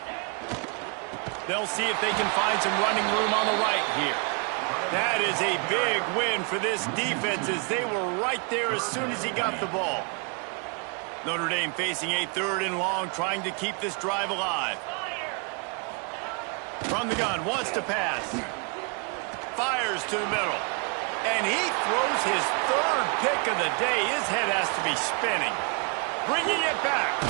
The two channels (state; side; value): quieter; left; 36.6 dB